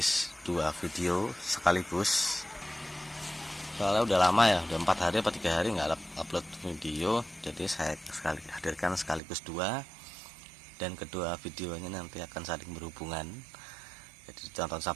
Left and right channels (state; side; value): drops out; left; at 9.2 s